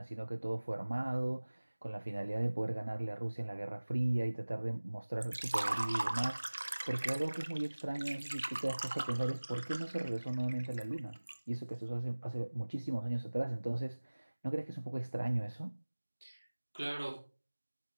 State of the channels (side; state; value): both; inverted; correlation -1.00